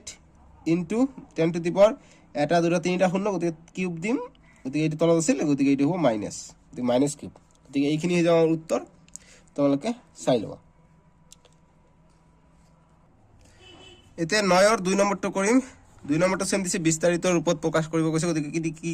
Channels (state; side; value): identical; both; correlation 1.00